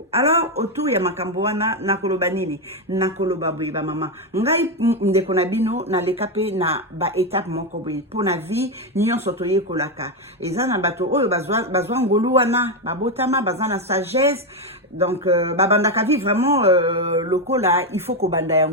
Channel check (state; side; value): normal; both; correlation 0.07